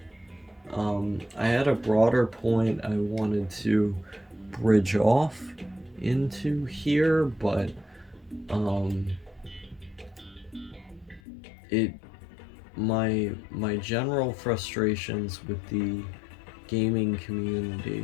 I had a broader point I wanted to bridge off into here, but um, it my general frustrations with the gaming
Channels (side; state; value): right; drops out; at 11.2 s